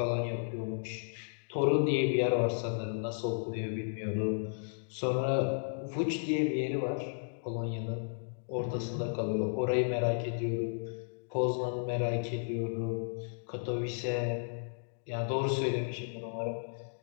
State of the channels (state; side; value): silent; right; digital silence